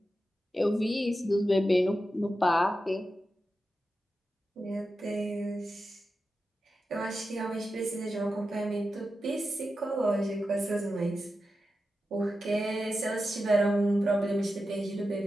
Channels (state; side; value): normal; both; correlation 0.91